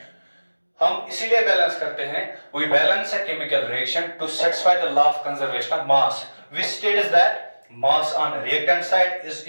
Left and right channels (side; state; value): both; inverted; correlation -1.00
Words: हम इसीलिए बैलेंस करते हैं, we balance a chemical reaction to satisfy the law of conservation of mass which states that mass on reactant side is